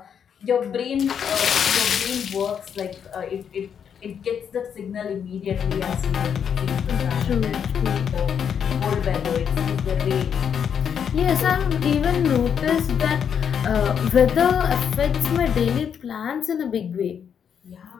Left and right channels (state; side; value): quieter; right; 7.8 dB